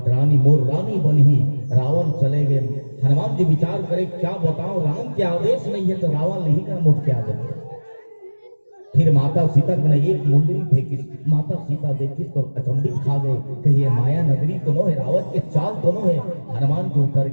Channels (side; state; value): both; inverted; correlation -1.00